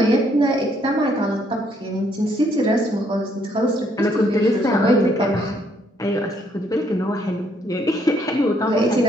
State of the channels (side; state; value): both; normal; correlation 0.69